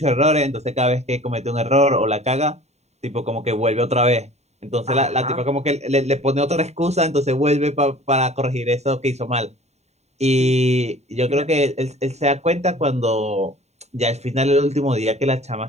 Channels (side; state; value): left; late; 0.32 ms